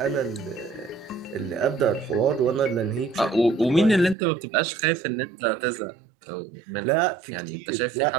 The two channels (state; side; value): drops out; left; at 4.2 s